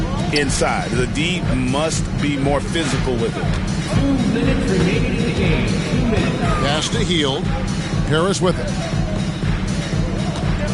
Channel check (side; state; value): both; identical; correlation 1.00